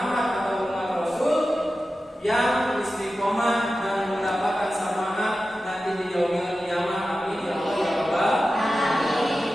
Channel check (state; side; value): normal; both; correlation 0.94